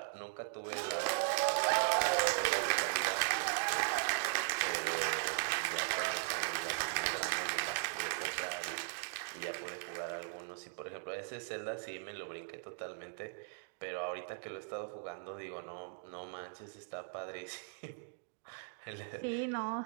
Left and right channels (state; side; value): silent; left; digital silence